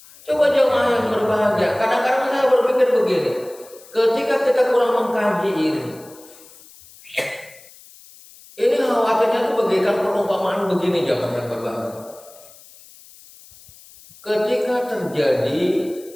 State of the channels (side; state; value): left; noise; hiss, 23 dB below the sound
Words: coba jemaah yang berbahagia. Kadang-kadang saya berpikir begini, ketika kita kurang mengkaji ini khawatirnya itu bagaikan perumpamaan begini jemaah yang berbahagia. Ketika terjadi